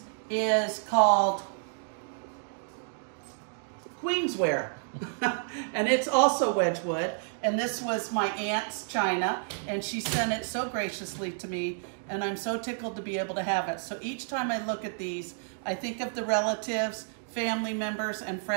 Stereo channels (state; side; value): silent; left; digital silence